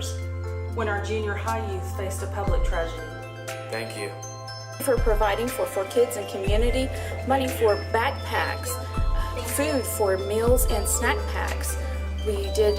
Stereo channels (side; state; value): both; identical; correlation 1.00